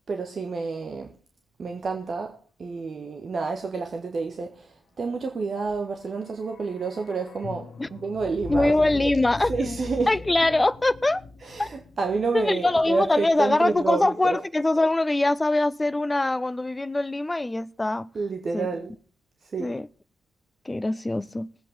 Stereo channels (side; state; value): both; normal; correlation 0.94